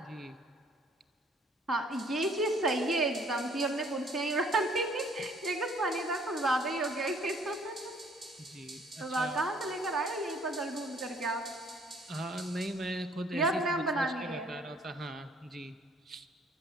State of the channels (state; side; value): normal; both; correlation 0.59